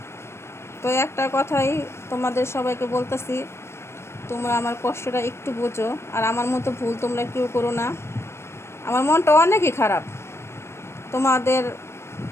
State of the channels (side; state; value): right; late; 0.13 ms